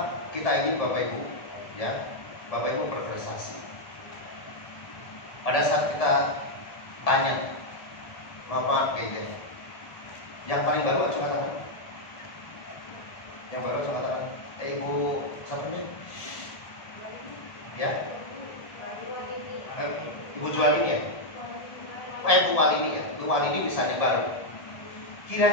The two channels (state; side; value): late; right; 1.7 ms